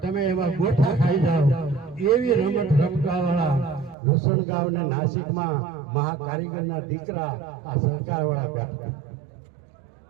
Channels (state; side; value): drops out; left; at 4.0 s